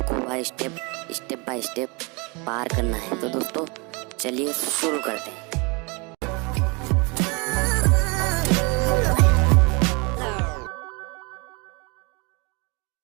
वह स्टेप बाय स्टेप पार करना है। तो दोस्तों चलिए शुरू करते हैं।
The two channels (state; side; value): quieter; left; 29.7 dB